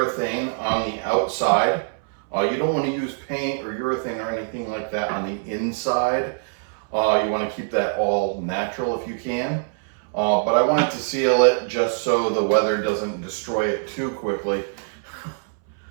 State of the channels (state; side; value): silent; left; 63 dB below the other